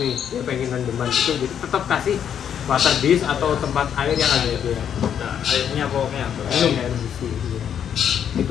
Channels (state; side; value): quieter; right; 8.8 dB